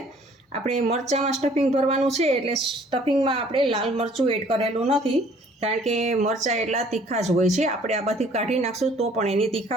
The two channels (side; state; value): both; normal; correlation 0.57